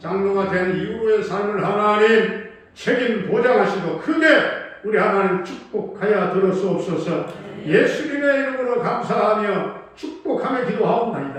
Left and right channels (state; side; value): identical; both; correlation 1.00